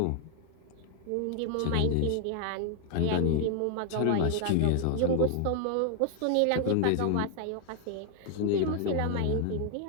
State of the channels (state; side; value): different; both; correlation 0.00